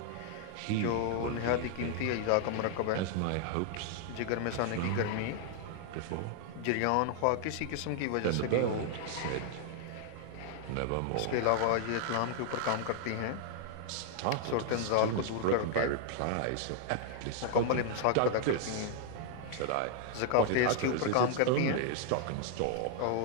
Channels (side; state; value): both; different; correlation 0.00